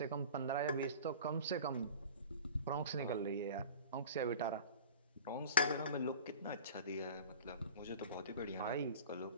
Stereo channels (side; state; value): both; inverted; correlation -0.39